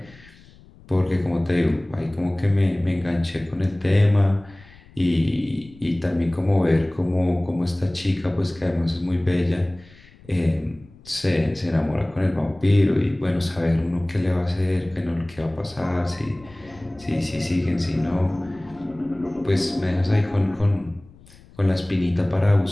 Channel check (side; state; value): left; noise; rumble, 24 dB below the sound